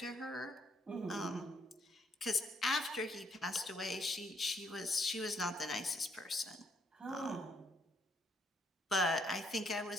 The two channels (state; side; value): normal; both; correlation 0.70